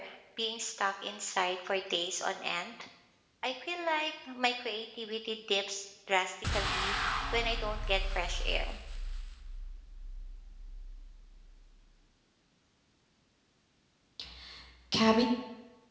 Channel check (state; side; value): identical; both; correlation 1.00